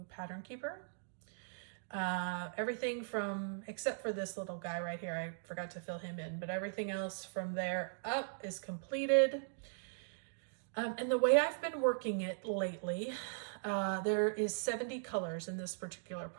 Pattern Keeper. Everything from, except for this little guy right here, I forgot to fill him in, but everything else from there up is completed. And the way I've been working it lately, there is 70 colors in this particular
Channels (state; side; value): silent; left; digital silence